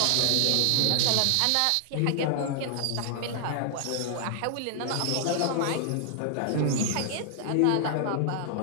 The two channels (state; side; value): different; both; correlation 0.00